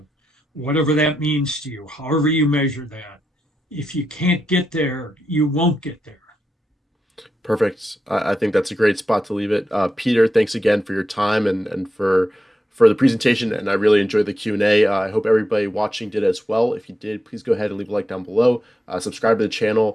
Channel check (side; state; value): both; normal; correlation 0.87